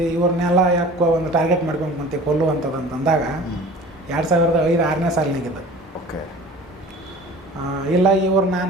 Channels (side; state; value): both; normal; correlation 0.43